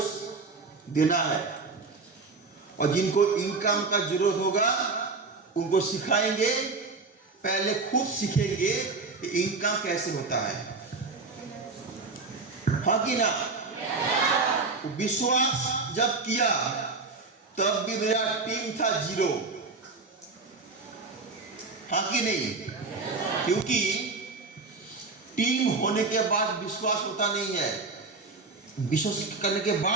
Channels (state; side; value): quieter; left; 4.0 dB